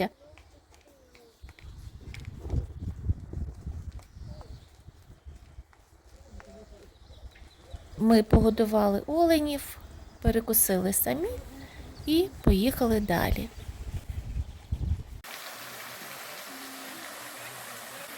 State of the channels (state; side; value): identical; both; correlation 1.00